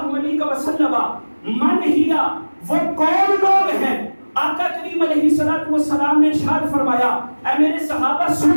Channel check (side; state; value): both; inverted; correlation -1.00